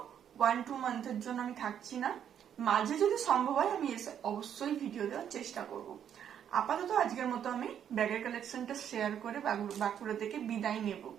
1-2 মান্থের জন্য আমি থাকছি না, মাঝে যদি সম্ভব হয় আমি এসে অবশ্যই ভিডিও দেওয়ার চেষ্টা করব। আপাতত আজকের মতো আমি ব্যাগের কালেকশনটা শেয়ার করে বাঁকুড়া থেকে বিদায় নেব।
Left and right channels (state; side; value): quieter; left; 9.1 dB